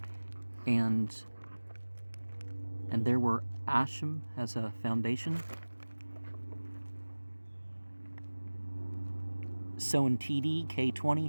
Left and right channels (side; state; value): both; inverted; correlation -1.00